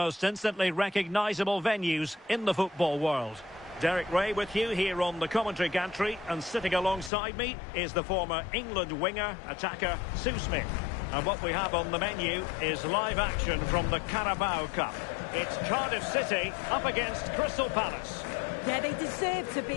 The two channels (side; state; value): right; drops out; at 7.1 s